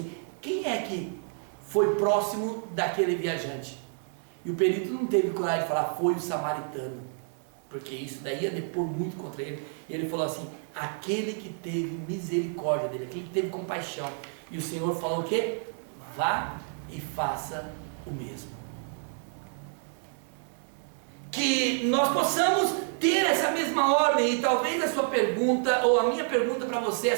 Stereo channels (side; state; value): left; silent; 58 dB below the other